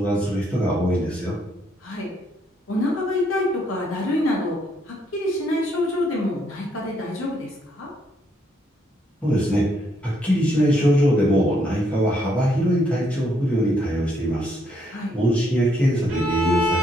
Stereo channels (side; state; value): both; normal; correlation 0.72